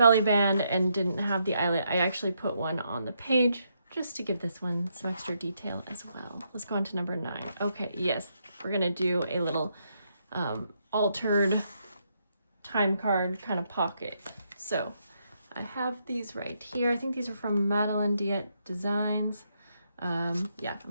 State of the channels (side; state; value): both; inverted; correlation -0.78